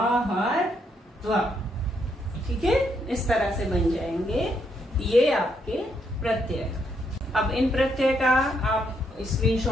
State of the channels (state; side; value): normal; both; correlation 0.75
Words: ठीक है। इस तरह से बन जाएंगे ये आपके प्रत्यय। अब इन प्रत्यय का आप